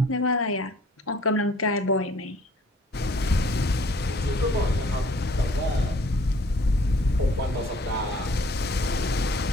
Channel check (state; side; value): normal; both; correlation 0.56